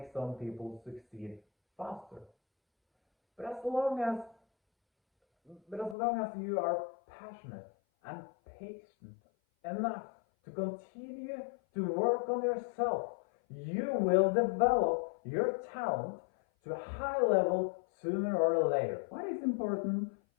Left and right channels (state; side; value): drops out; right; at 6.0 s